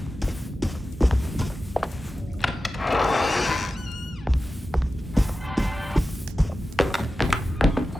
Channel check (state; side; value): normal; both; correlation 0.93